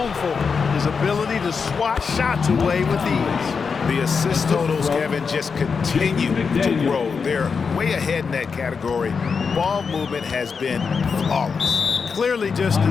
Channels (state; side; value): quieter; right; 5.5 dB